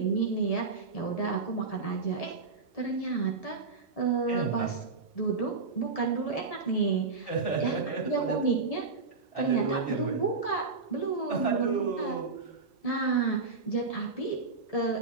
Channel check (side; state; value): left; quieter; 4.3 dB